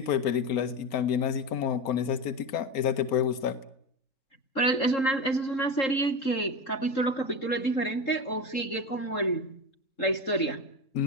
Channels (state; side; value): late; right; 4.3 ms